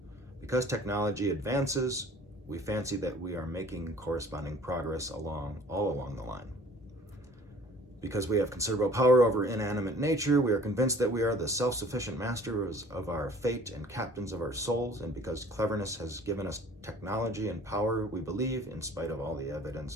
advances, we fancy that we are making corresponding progress all along the line. Because we have considerable power over inanimate nature, we are convinced that we are the self-sufficient masters of our fate and captains of our souls, and because cleverness has given us technology and power, we believe, in spite of all the evidence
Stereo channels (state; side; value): normal; both; correlation 0.51